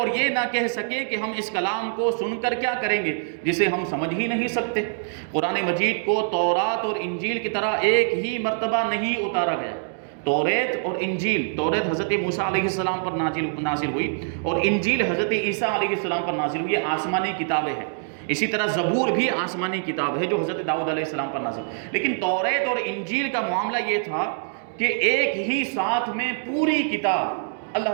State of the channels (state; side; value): silent; left; digital silence